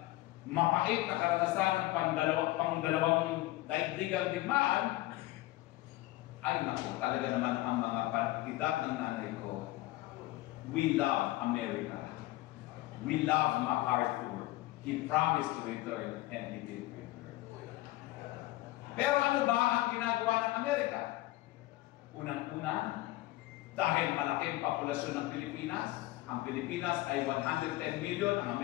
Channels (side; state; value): right; quieter; 17.9 dB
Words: mapait na karanasan ng pangdalawang daigdigang digmaan, ay naku, talaga naman ang mga edad ng nanay ko. We love America. We love MacArthur. He promised to return and he did return. Pero ano ba ang ginagawa ng Amerika? Unang-una, dahil malaking populasyon ng Pilipinas, ang Pilipinas ay 110 million, ang